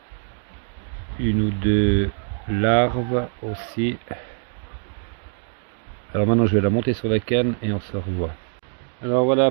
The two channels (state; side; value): silent; left; 63 dB below the other